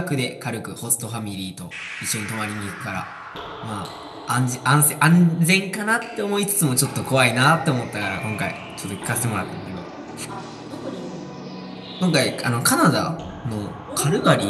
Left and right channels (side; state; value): both; identical; correlation 1.00